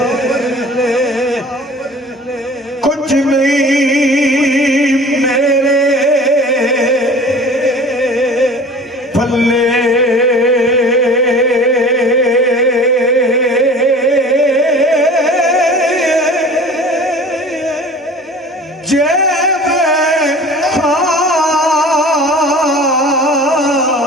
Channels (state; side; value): normal; both; correlation 0.42